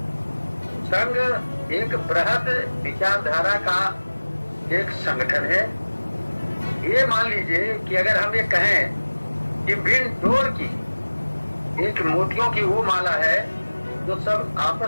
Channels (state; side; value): inverted; both; correlation -1.00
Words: संघ एक बृहद विचारधारा का एक संगठन है। ये मान लीजिए कि अगर हम ये कहें कि बिन डोर की एक मोतियों की वो माला है जो सब